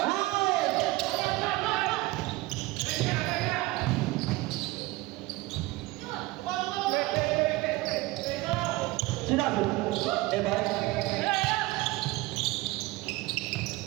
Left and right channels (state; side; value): quieter; left; 20.5 dB